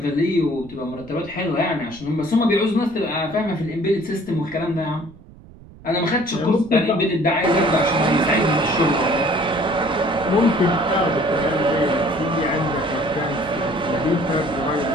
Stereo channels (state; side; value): noise; right; rumble, 21 dB below the sound